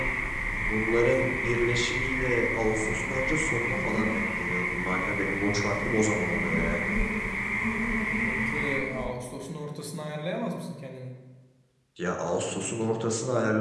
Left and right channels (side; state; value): both; identical; correlation 1.00